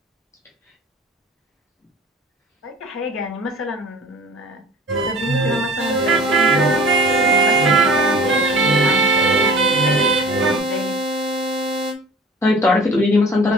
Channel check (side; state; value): both; normal; correlation 0.44